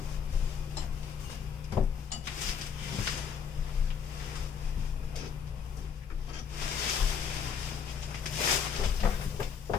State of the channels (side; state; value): right; quieter; 7.1 dB